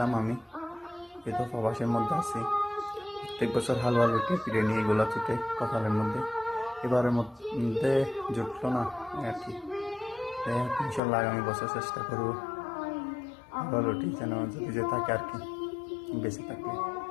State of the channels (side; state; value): right; drops out; at 11.0 s